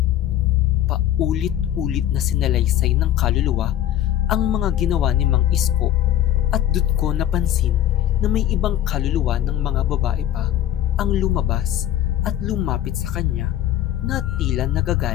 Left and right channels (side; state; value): right; quieter; 11.9 dB